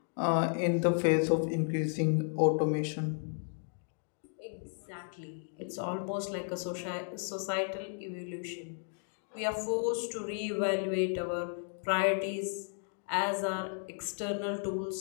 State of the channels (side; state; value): right; silent; 55 dB below the other